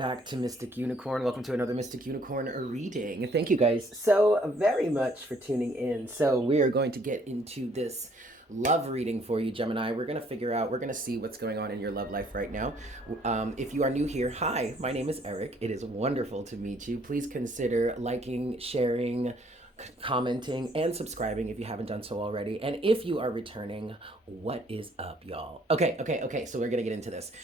to Mystic Unicorn. Welcome to another Mystic Unicorn reading. Thank you guys so very much for tuning in. So we are going to get into this love reading for you, Gemini. We're going to see what's going on in your love life right now. If you are new here, hi, my name is Eric. It is wonderful to meet you. Please consider liking, sharing, commenting, and subscribing if you haven't done so already. And if you are returning, what is up, y'all? Okay. So we're gonna get into this.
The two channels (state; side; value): normal; both; correlation 0.63